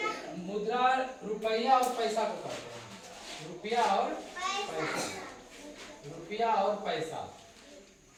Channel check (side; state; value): both; identical; correlation 1.00